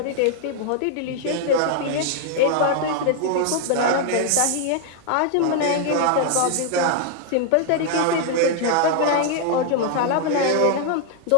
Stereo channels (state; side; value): different; both; correlation 0.00